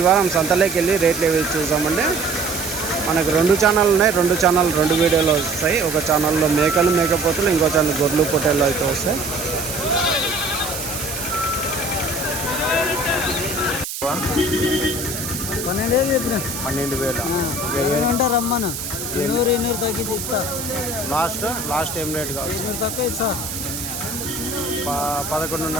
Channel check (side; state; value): right; noise; hiss, 7 dB below the sound